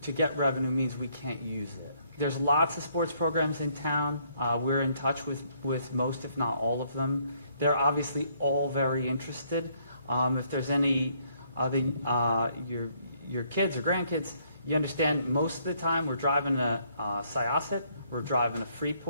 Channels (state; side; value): inverted; both; correlation -0.68